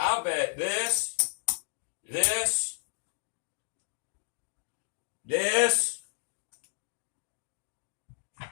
bet this, this, this,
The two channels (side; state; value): right; silent; 56 dB below the other